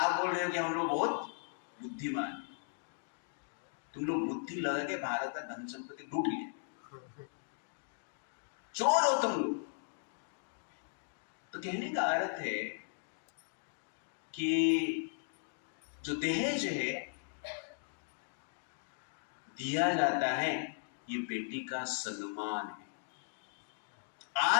बोल रहे हो कि हम लोग बहुत बुद्धिमान हैं। तुम लोग बुद्धि लगा के भारत का धन संपत्ति लूट लिए, चोर हो तुम लोग। तो कहने का अर्थ है कि जो दहेज है दिया जाता है, ये बेटी का सम्मान है।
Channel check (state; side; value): silent; right; digital silence